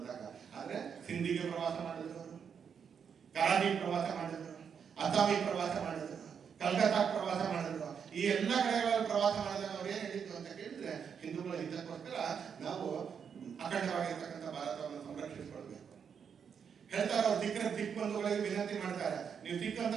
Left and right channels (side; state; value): left; quieter; 7.1 dB